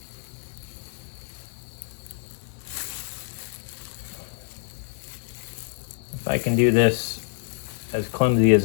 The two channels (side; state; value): right; silent; digital silence